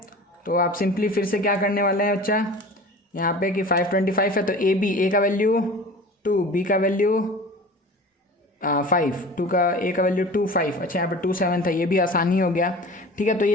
तो आप सिंपली फिर से क्या करने वाले हैं बच्चा, यहाँ पे कि 525 है तो ए का वैल्यू 2, बी का वैल्यू 5, ए का वैल्यू 2 5। अच्छा यहाँ पे 27 था, ये भी आसानी हो गया। ठीक है, तो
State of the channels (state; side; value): normal; both; correlation 0.39